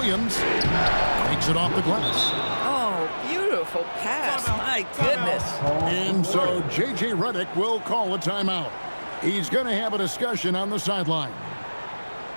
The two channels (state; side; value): inverted; both; correlation -1.00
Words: Takes it off the glass. Oh, beautiful pass. My goodness. And so J.J. Redick will call a timeout. He's going to have a discussion on the sideline.